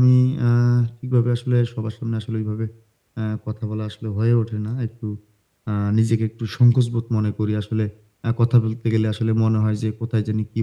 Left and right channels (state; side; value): identical; both; correlation 1.00